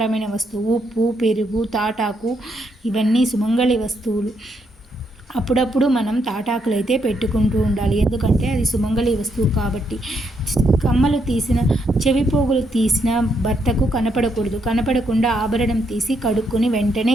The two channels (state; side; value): normal; both; correlation 0.77